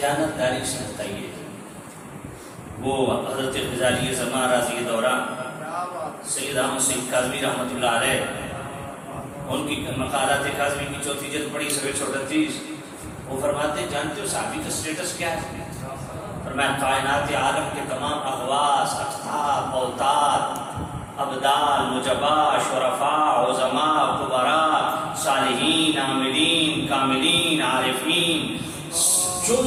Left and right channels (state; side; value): identical; both; correlation 1.00